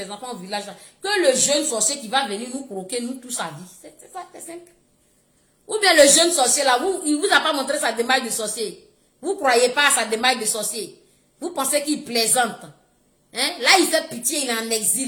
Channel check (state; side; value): identical; both; correlation 1.00